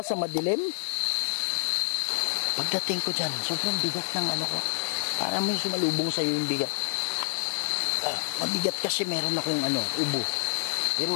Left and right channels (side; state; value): right; silent; 59 dB below the other